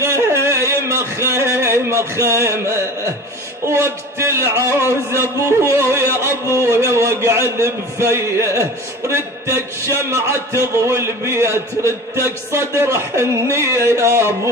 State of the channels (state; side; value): normal; both; correlation 0.37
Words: خيمة خيمة وقت العوز ابويا واقعد بفيه ردتك شمعة تضوي البيت ردتك صدر حنية يا